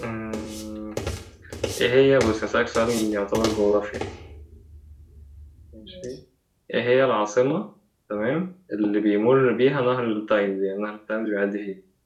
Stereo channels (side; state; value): both; identical; correlation 1.00